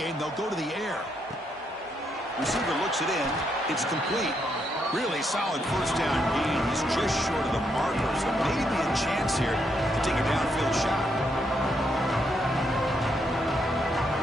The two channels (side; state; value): both; normal; correlation 0.77